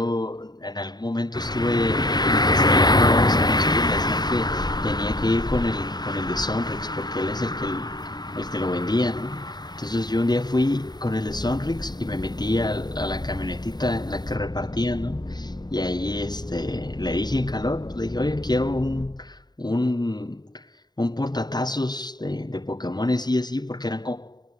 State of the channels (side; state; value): right; late; 0.20 ms